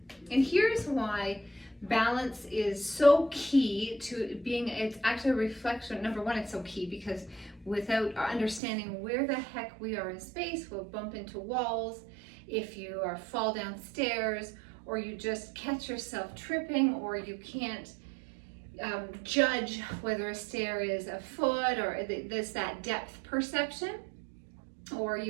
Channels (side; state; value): left; drops out; at 8.6 s